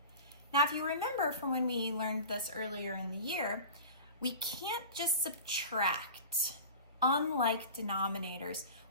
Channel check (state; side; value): inverted; both; correlation -0.36